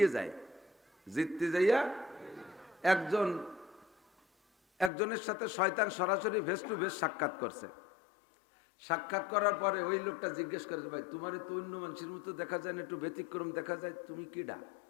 যায়। জিততে যাইয়া একজনের সাথে শয়তান সরাসরি ফেস টু ফেস সাক্ষাৎ করছে। সাক্ষাৎ করার পরে ওই লোকটা জিজ্ঞেস করেছে, ভাই তোমার তো অন্য মানুষের মতো দেখা যায় না, একটু ব্যতিক্রম দেখা যায়, তুমি কিডা?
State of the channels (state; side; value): drops out; right; at 4.9 s